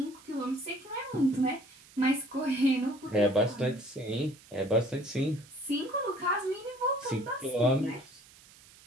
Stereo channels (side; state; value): right; noise; hiss, 24 dB below the sound